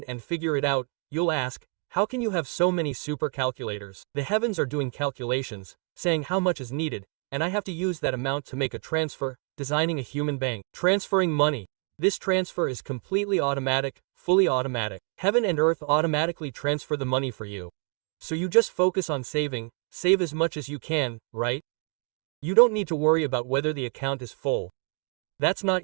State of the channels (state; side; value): quieter; left; 37.5 dB